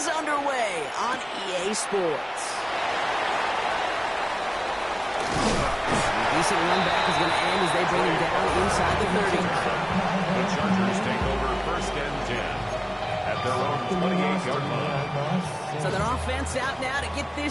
underway on EA Sports. The decent run back is going to end as they bring him down inside the 30. The Chargers take over first and 10 at their own 28-yard line. So their offense out now to get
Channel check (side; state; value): both; identical; correlation 1.00